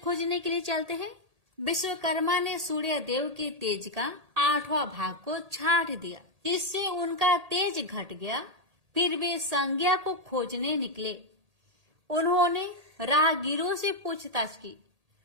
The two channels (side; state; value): left; late; 1.8 ms